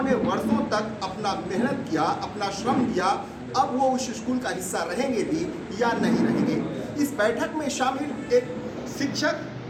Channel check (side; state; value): both; identical; correlation 1.00